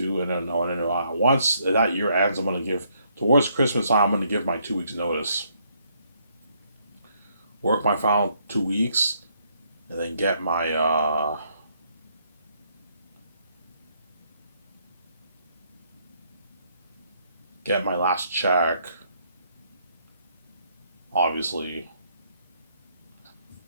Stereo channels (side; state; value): both; inverted; correlation -0.71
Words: and then once that year ends, I'm gonna give towards Christmas time. I'm gonna give my 2 weeks notice. Work my final 2 weeks, and then get my last check. Obviously,